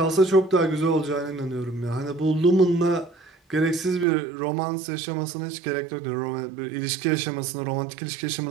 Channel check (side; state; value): left; drops out; at 4.0 s